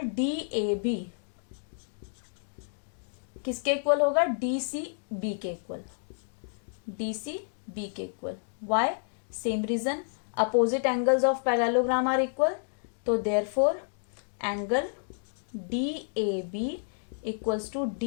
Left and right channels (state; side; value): silent; right; digital silence